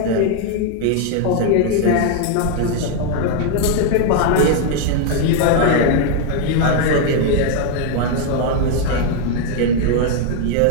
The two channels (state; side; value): different; both; correlation 0.00